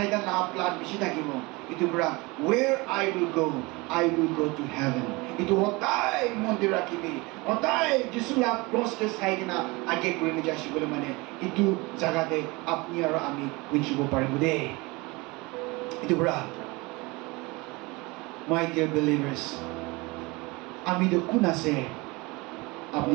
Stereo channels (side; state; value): left; quieter; 24.5 dB